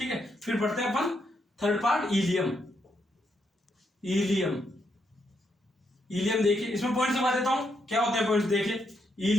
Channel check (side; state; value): both; normal; correlation 0.78